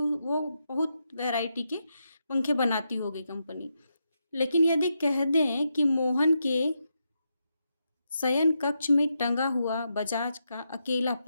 बहुत वैरायटी के पंखे बनाती होगी कंपनी। लेकिन यदि कह दें कि मोहन के शयन कक्ष में टंगा हुआ बजाज का अकेला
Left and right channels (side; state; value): both; inverted; correlation -0.84